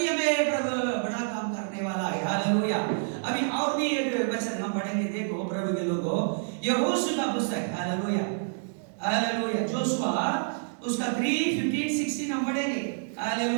हालेलुया। अभी और भी एक वचन हम पढ़ेंगे, देखो प्रभु के लोगों, यहोशू का पुस्तक, हालेलुया हालेलुया, जोशुआ उसका 3:15-16 हम पढ़ेंगे,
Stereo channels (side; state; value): left; silent; digital silence